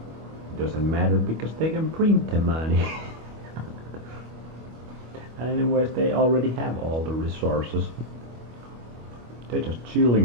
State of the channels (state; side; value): late; left; 25 ms